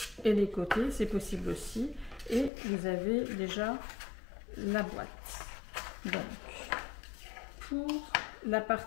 et les côtés, c'est possible aussi. Et vous avez déjà la boîte. Donc, pour la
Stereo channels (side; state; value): right; drops out; at 2.5 s